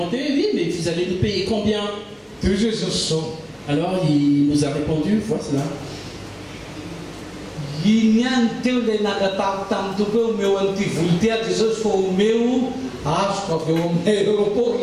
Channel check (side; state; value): both; identical; correlation 1.00